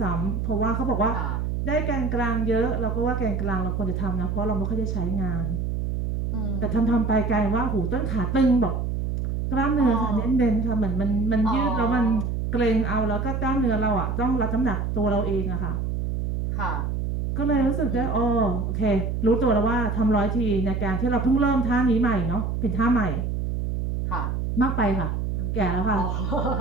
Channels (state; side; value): noise; right; hum, 1 dB below the sound